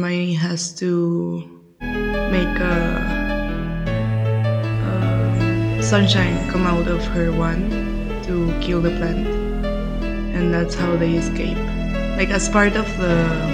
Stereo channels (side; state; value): both; identical; correlation 1.00